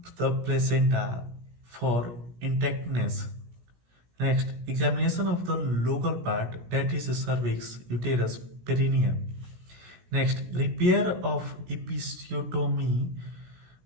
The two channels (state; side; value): late; left; 17 ms